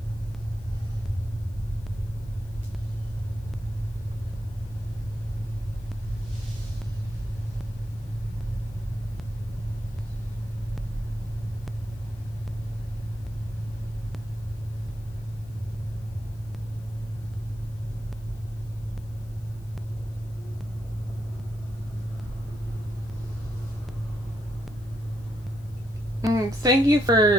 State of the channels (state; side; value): noise; left; hiss, 28 dB below the sound